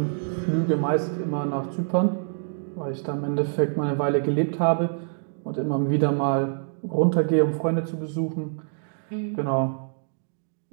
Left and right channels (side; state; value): left; silent; digital silence